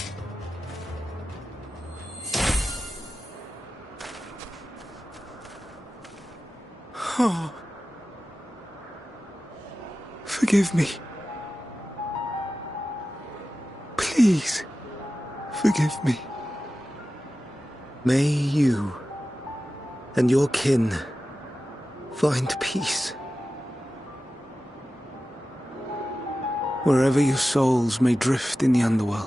Oh. Forgive me. Please, forgive me. May you and your kin find peace. Wherever your souls may drift in the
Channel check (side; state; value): both; normal; correlation 0.94